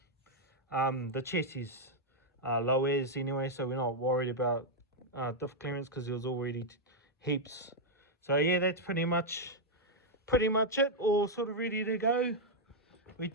The chassis low as anyway, so we're not worried about diff clearance because there was already heaps. So yeah, that's pretty much it, all sort of ready to go. We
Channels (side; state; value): both; normal; correlation -0.02